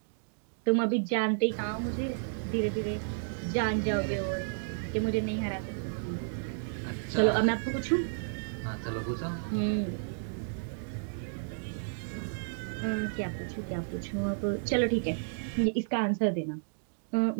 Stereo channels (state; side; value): silent; left; digital silence